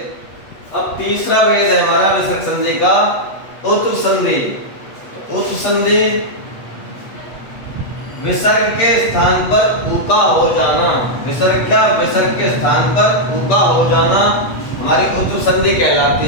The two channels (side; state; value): right; late; 8.2 ms